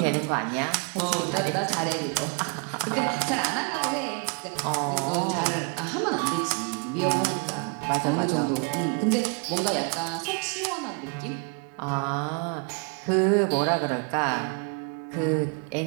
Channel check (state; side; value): quieter; left; 35.9 dB